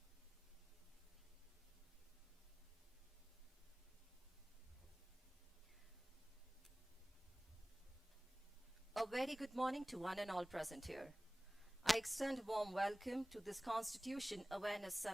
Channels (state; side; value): normal; both; correlation 0.98